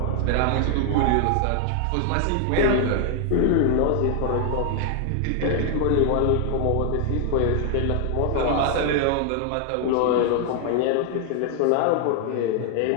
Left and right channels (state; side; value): different; both; correlation 0.00